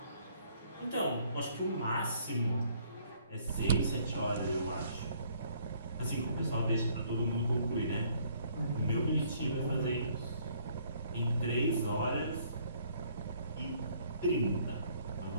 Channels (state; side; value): inverted; both; correlation -0.63